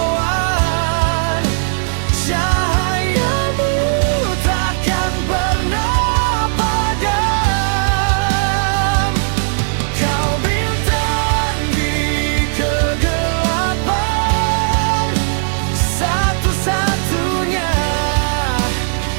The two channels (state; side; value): silent; left; digital silence